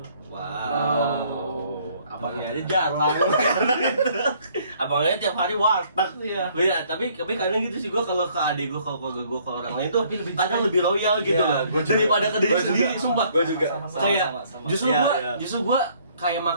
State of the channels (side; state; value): both; inverted; correlation -0.62